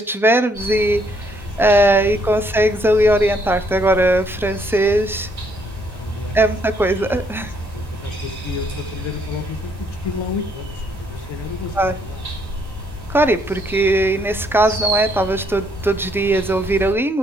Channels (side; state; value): both; normal; correlation 0.69